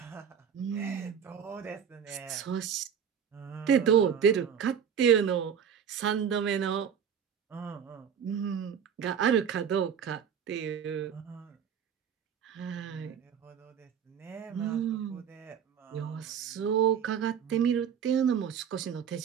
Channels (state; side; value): quieter; left; 7.9 dB